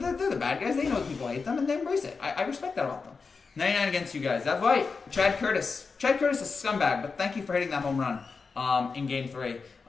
the bad guys. They know people hate them, and they embrace it. I respect that about them. 99 against you guys. That's right. Chad Curtis. Chad Curtis is a scumbag, but thank you for hitting that home run in Game 3.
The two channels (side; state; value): right; quieter; 4.8 dB